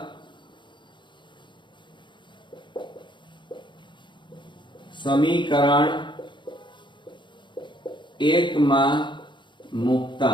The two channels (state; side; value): late; right; 0.23 ms